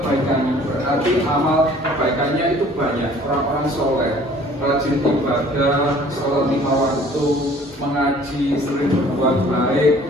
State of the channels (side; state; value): both; normal; correlation 0.53